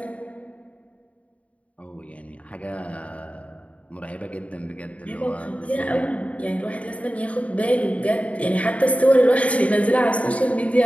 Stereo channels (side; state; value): right; late; 0.066 ms